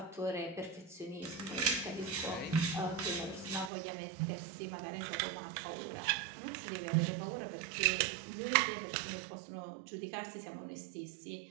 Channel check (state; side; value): drops out; left; at 3.7 s